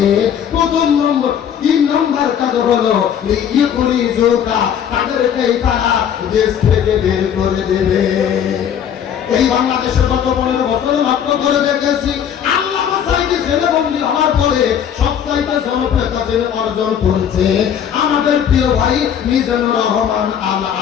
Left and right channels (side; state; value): right; quieter; 8.8 dB